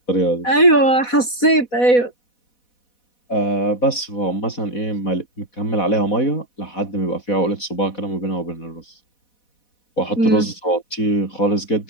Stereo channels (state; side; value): late; right; 4.1 ms